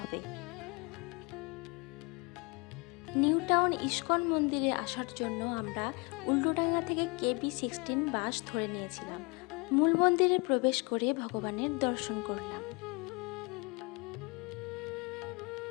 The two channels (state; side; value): quieter; right; 29.7 dB